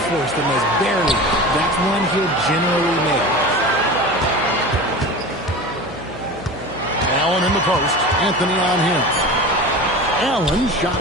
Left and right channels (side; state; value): left; noise; hum, 17 dB below the sound